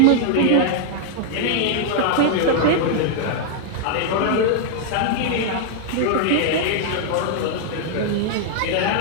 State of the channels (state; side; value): different; both; correlation 0.00